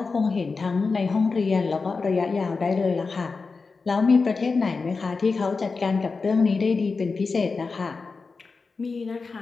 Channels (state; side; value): quieter; right; 4.4 dB